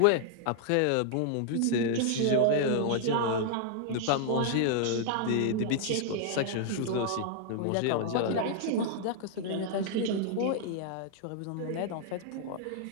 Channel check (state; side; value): different; both; correlation -0.01